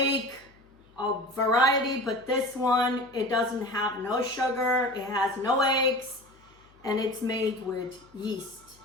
a variety, but this one, it doesn't have no sugar, it has no eggs, and it's made with yeast.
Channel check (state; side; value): noise; left; hum, 30 dB below the sound